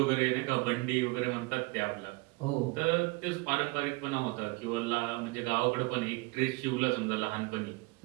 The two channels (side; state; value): left; quieter; 25.3 dB